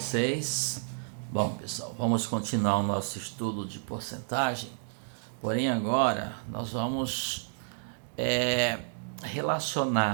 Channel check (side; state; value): left; silent; digital silence